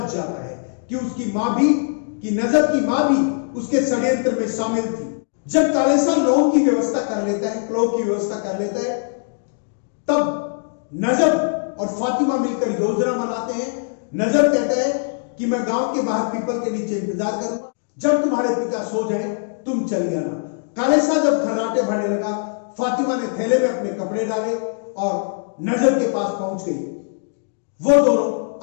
जाता है कि उसकी मां भी, कि नजब की मां भी उसके षड्यंत्र में शामिल थी। जब काले शाह लौंग की व्यवस्था कर लेता है, क्लोव की व्यवस्था कर लेता है, तब नजब और फातिमा मिलकर योजना बनाते हैं। नजब कहता है कि मैं गांव के बाहर पीपल के नीचे इंतजार करूंगा, जब तुम्हारे पिता सो जाए तुम चली आना। काले शाह जब खर्राटे भरने लगा, फातिमा ने थैले में अपने कपड़े डाले और नजब के पास पहुंच गई। वो दोनों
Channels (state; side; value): silent; right; digital silence